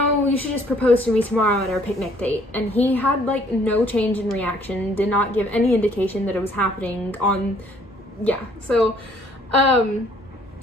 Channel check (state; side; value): normal; both; correlation 0.61